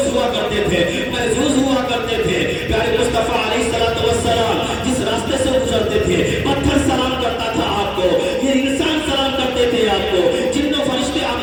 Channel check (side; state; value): both; identical; correlation 1.00